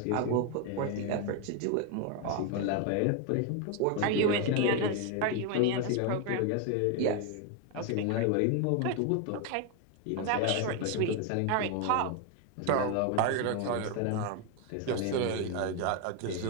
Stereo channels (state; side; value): different; both; correlation 0.01